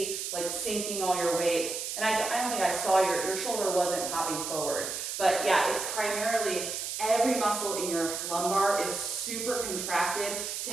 like sinking all your weight. And I don't think I saw your shoulder wasn't hopping forward. But yeah, it's primarily every muscle in your lumbar is super contracted to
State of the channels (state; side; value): noise; right; hiss, 4 dB below the sound